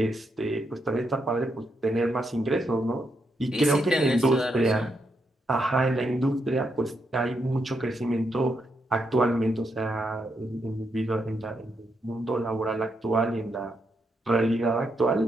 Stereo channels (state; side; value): normal; both; correlation 0.80